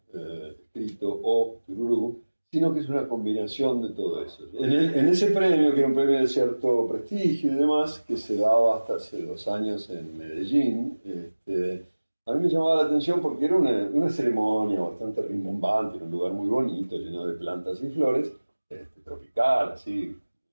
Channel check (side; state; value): both; inverted; correlation -1.00